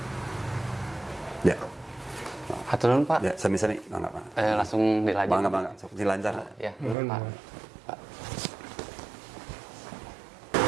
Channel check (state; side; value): drops out; left; at 7.0 s